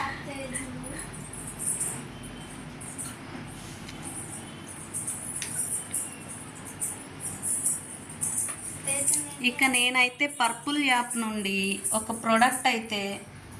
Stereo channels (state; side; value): identical; both; correlation 1.00